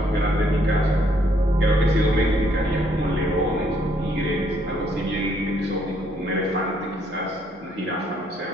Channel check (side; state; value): both; normal; correlation 0.69